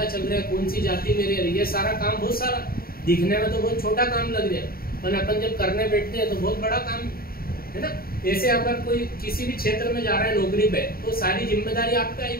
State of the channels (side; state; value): right; late; 0.43 ms